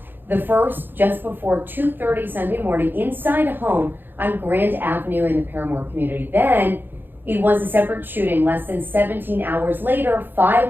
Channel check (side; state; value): left; late; 0.096 ms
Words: The first just before 2:30 Sunday morning inside a home on Grand Avenue in the Paramore community. Then it was a separate shooting less than 17 hours later,